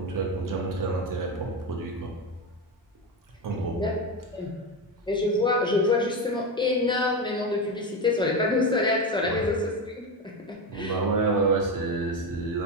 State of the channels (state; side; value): normal; both; correlation 0.16